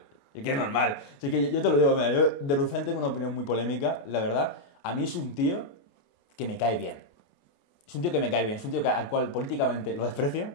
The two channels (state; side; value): late; right; 29 ms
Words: Es que es normal. Así que yo te lo digo, mira, yo de Rufián tengo una opinión muy polémica, la verdad. A mí es un tío que me cae bien. Es un tío que me cae bien. Es un tío al cual políticamente lo desprecio,